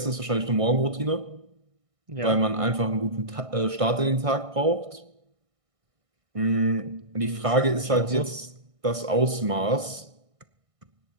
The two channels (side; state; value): left; late; 1.6 ms